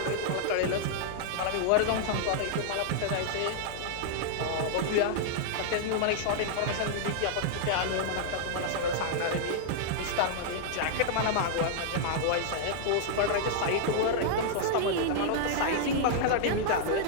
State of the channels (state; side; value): different; both; correlation -0.01